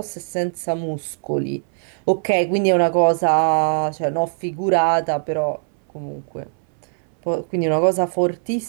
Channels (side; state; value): left; silent; 64 dB below the other